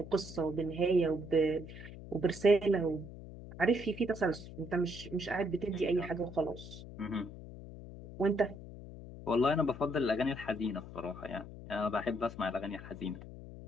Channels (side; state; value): left; noise; hum, 13 dB below the sound